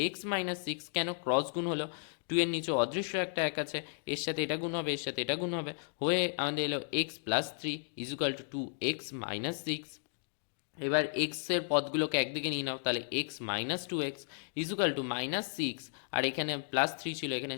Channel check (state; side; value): silent; right; digital silence